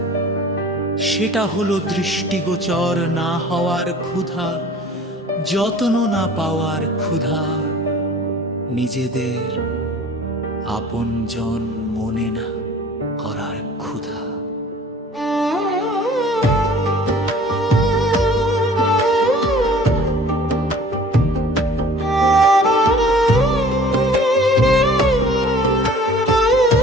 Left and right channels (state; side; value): normal; both; correlation 0.48